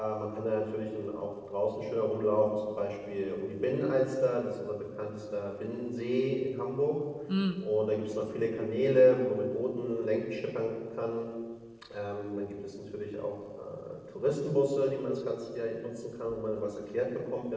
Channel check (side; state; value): both; identical; correlation 1.00